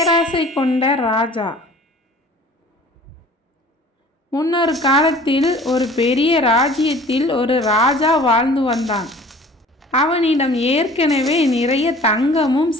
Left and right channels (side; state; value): both; normal; correlation 0.47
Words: கொண்ட ராஜா. முன்னொரு காலத்தில் ஒரு பெரிய ராஜ்யத்தில் ஒரு ராஜா வாழ்ந்து வந்தான். அவனிடம் ஏற்கனவே நிறைய தங்கமும்